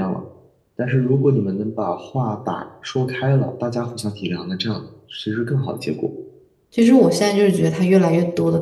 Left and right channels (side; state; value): both; identical; correlation 1.00